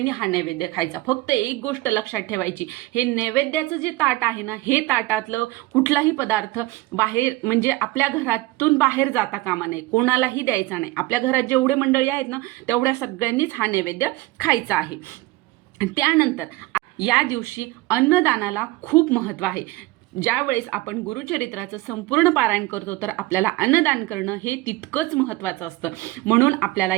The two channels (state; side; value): quieter; left; 19.3 dB